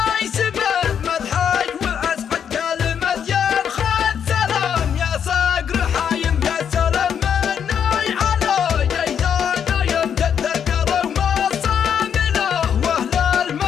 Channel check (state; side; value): quieter; right; 8.1 dB